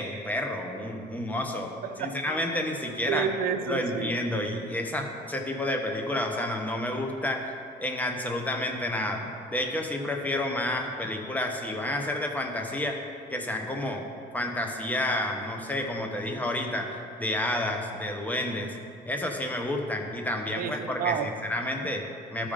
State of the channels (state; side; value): normal; both; correlation 0.44